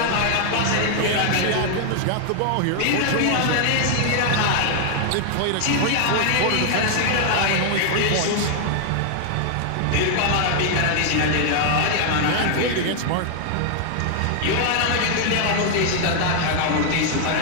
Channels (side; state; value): both; different; correlation 0.00